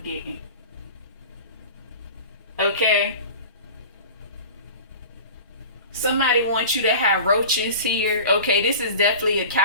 Okay? Somebody wants you to have roaches here. Okay, this is definitely a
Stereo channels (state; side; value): inverted; both; correlation -0.37